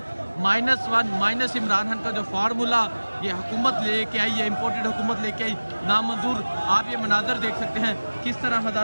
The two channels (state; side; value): inverted; both; correlation -1.00